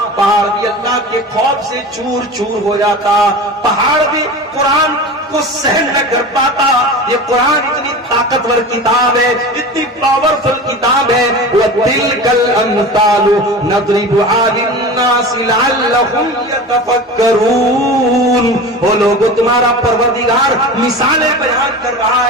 پہاڑ بھی اللہ کے خوف سے چور چور ہو جاتا، پہاڑ بھی قرآن کو سہن نہ کر پاتا۔ یہ قرآن اتنی طاقتور کتاب ہے، اتنی پاورفل کتاب ہے۔ وَتِلْكَ الْأَمْثَالُ نَضْرِبُهَا لِلنَّاسِ لَعَلَّهُمْ يَتَفَكَّرُونَ۔ وہ لوگوں تمہارا پروردگار مثالیں بیان کر رہا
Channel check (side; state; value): both; normal; correlation 0.32